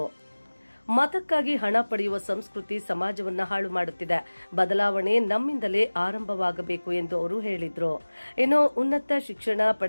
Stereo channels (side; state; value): both; inverted; correlation -1.00